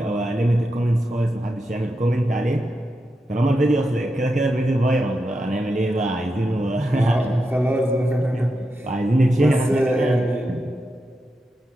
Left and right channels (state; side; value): normal; both; correlation 0.87